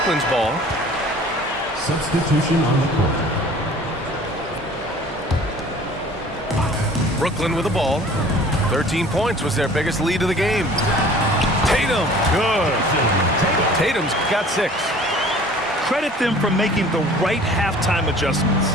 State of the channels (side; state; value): both; normal; correlation 0.48